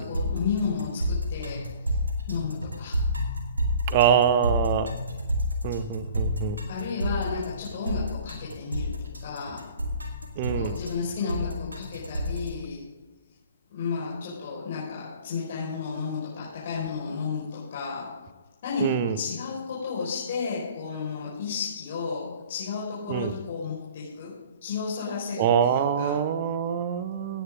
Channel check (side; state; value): both; inverted; correlation -0.47